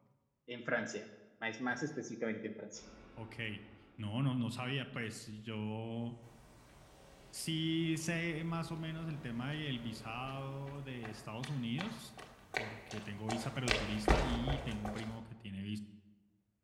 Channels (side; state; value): both; identical; correlation 1.00